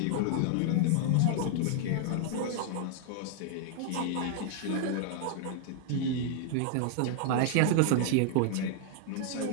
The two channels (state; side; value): different; both; correlation -0.01